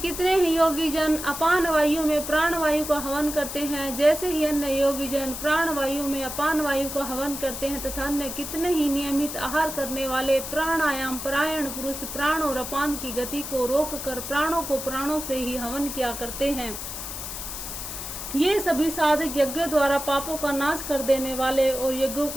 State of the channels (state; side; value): noise; left; hiss, 7 dB below the sound